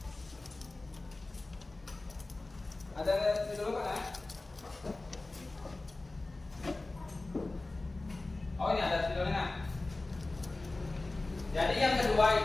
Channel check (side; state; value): right; quieter; 3.1 dB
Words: Ada di dulu kan? Oh, ini ada videonya. Jadi yang